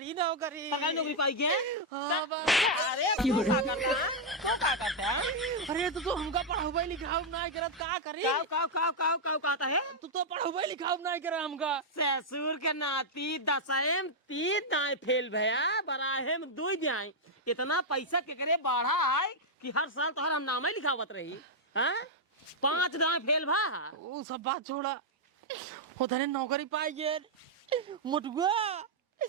नौकरी। सरकारी नौकरी पाई के? हाँ अरे तू क्या करता है? तू क्या करता है? अरे तो हमका पढ़ाई लिखाऊ ना करत का करी? काव कहता है? तू तो पढ़ाई लिखाऊ ना करे हमका। ससुर के नाती 10 3 दाएं फेल भया, बराहे में 2 दाएं। इतना पैसा के करे बढ़ा है कि हर साल तो हम नाम ही लिखावत रही। हाँ 5 दाएं फेल भा। वो सब बात छोड़ा, वो धने नौकरी पाई गए मुटुआ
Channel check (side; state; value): both; normal; correlation -0.03